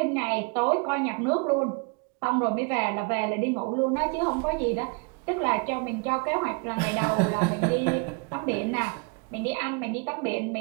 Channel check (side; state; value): left; quieter; 33.5 dB